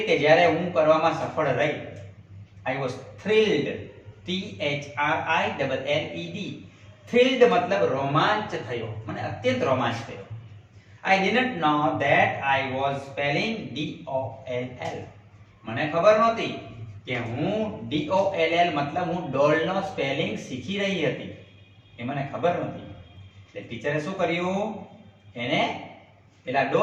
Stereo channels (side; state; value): both; identical; correlation 1.00